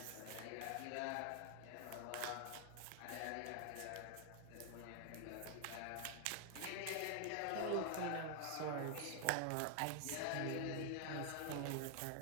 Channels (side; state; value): both; different; correlation 0.00